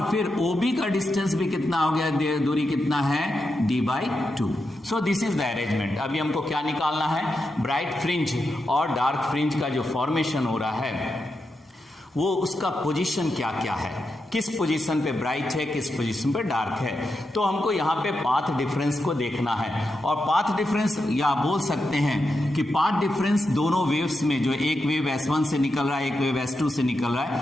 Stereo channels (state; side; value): normal; both; correlation 0.87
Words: फिर OB का डिस्टेंस भी कितना हो गया? दूरी कितना है? D/2। So this is the arrangement. अभी हमको क्या निकालना है? ब्राइट फ्रिंज और डार्क फ्रिंज का जो फॉर्मेशन हो रहा है वो उसका पोजीशन क्या क्या है, किस पोजीशन पे ब्राइट है, किस पोजीशन पे डार्क है। तो हमको यहाँ पे पाथ डिफरेंस को देखना है, और पाथ डिफरेंस या बोल सकते हैं कि पाथ डिफरेंस दोनों वेव्स में, जो एक वेव S1 से निकल रहा है, एक वेव S2 से निकल रहा